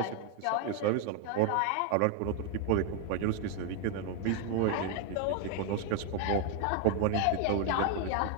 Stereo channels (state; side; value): different; both; correlation 0.00